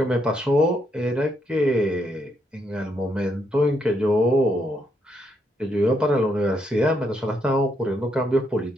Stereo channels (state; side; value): normal; both; correlation 0.77